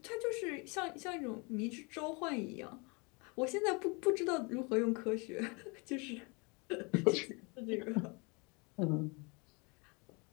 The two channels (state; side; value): quieter; right; 30.7 dB